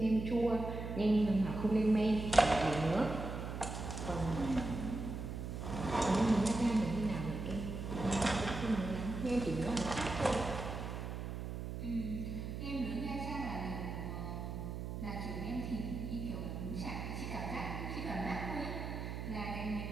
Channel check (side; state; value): right; noise; hum, 5 dB below the sound